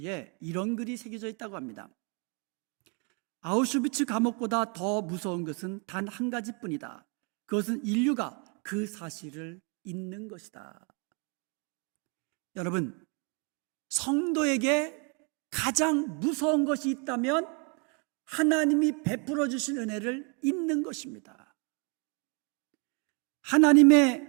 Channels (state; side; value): quieter; left; 34.9 dB